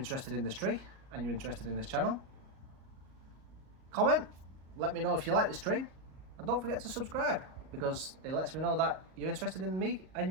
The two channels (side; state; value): left; late; 38 ms